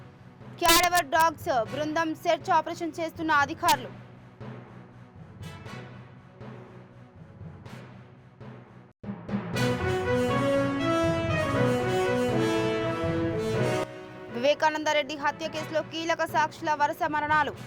క్యాడవర్ డాగ్స్ బృందం సెర్చ్ ఆపరేషన్ చేస్తున్న అధికారులు. వివేకానందరెడ్డి హత్య కేసులో కీలక సాక్షుల వరుస మరణాలు.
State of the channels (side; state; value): both; identical; correlation 1.00